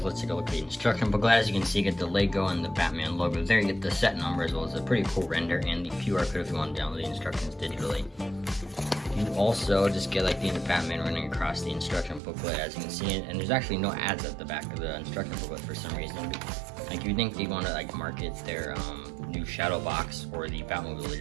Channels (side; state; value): left; drops out; at 12.2 s